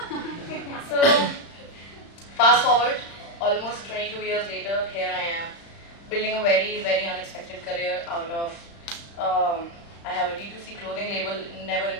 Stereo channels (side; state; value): right; late; 35 ms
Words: So fast forward, almost 22 years later, here I am, building a very, very unexpected career out of I have a D2C clothing label, never in